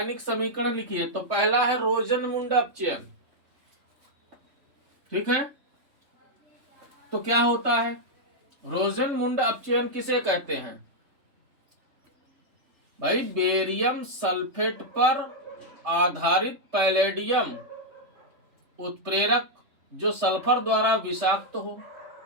समीकरण लिखिए। तो पहला है रोजनमुंड अपचयन। ठीक है, तो क्या होता है? रोजनमुंड अपचयन किसे कहते हैं भाई? बेरियम सल्फेट पर आधारित पैलेडियम उत्प्रेरक जो सल्फर द्वारा विषाक्त हो।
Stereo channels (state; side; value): late; left; 3.3 ms